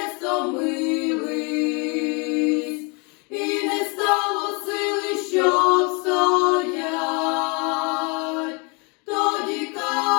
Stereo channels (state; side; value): quieter; right; 31.7 dB